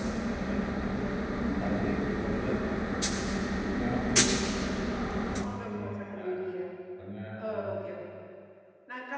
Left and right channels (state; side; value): identical; both; correlation 1.00